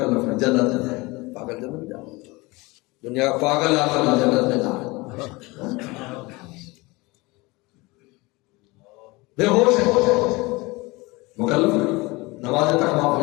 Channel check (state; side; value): quieter; right; 23.4 dB